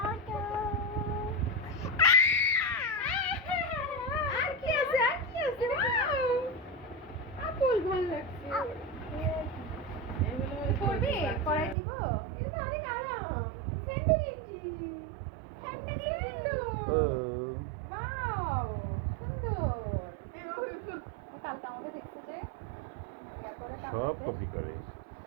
সব কপি করে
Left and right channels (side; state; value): left; drops out; at 11.8 s